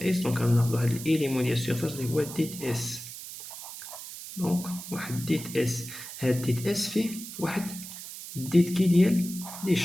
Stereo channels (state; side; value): noise; right; hiss, 11 dB below the sound